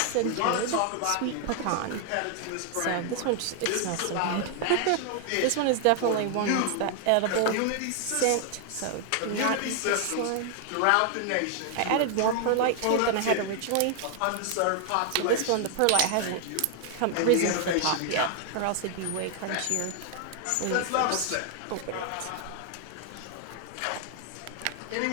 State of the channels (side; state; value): both; different; correlation 0.00